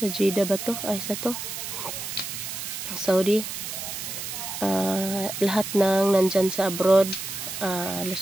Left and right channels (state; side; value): noise; right; hiss, 6 dB below the sound